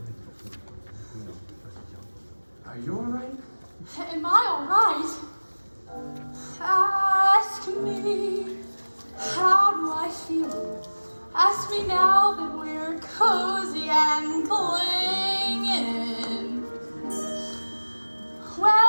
Are you alright? Am I alright? Ask me, how do I feel? Ask me now that we're cozy and clinging.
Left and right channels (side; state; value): both; inverted; correlation -1.00